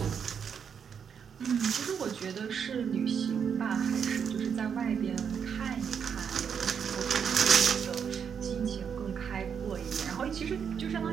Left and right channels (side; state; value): left; quieter; 7.2 dB